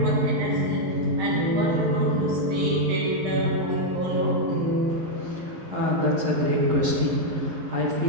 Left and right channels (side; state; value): left; late; 11 ms